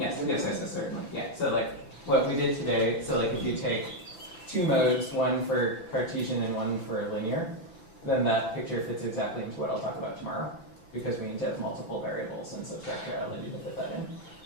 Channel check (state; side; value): late; right; 6.0 ms